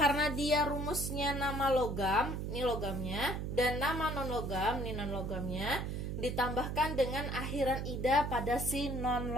dia rumusnya nama logam, ini logamnya, dan nama non-logam, ini non-logamnya, ditambahkan dengan akhiran ida pada si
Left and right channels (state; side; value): noise; right; hum, 3 dB below the sound